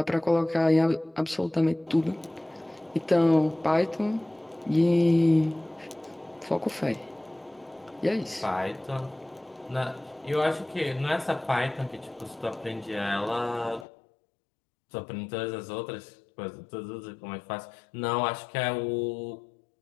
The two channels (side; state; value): right; drops out; at 13.9 s